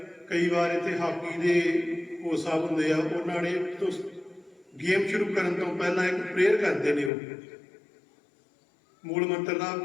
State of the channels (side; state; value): right; drops out; at 7.1 s